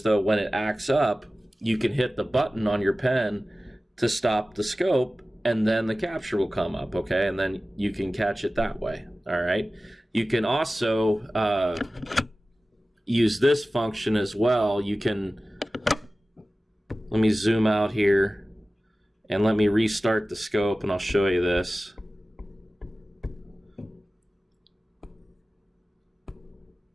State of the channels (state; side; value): normal; both; correlation 0.96